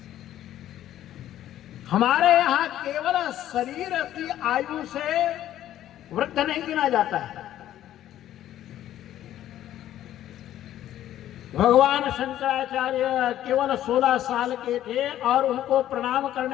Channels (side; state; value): right; quieter; 12.4 dB